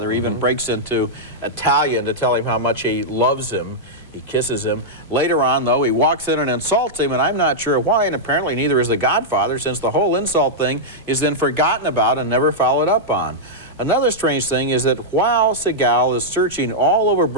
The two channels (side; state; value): both; normal; correlation -0.07